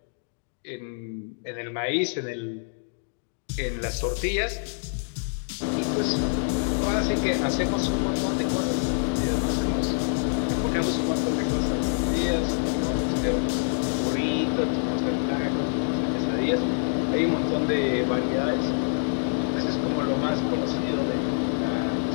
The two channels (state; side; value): silent; right; digital silence